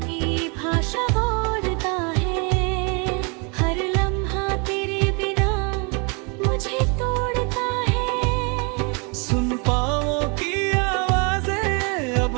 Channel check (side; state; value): left; quieter; 33.2 dB